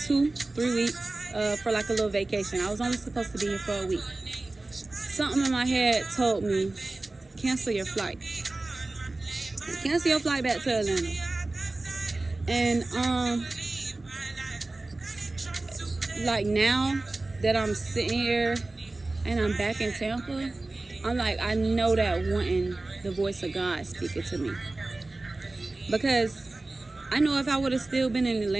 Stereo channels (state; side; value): quieter; left; 3.0 dB